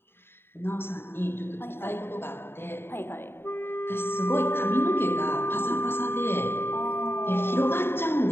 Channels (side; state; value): right; late; 0.11 ms